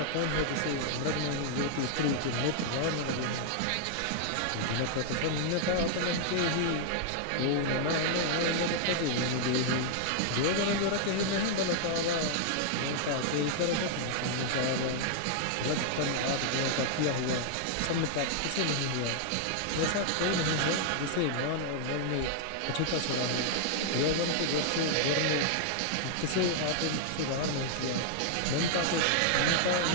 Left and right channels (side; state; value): both; different; correlation 0.00